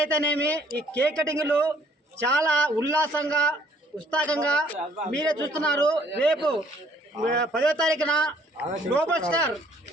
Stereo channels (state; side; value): normal; both; correlation 0.61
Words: అయితేనేమి ఈ కేక్ కటింగ్లు చాలా ఉల్లాసంగా ఉత్సాహంగా మీరే చూస్తున్నారు. రేపు 10వ తారీఖున గ్లోబల్ స్టార్